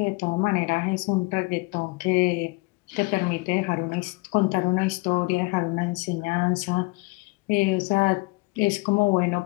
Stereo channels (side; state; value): right; quieter; 26.1 dB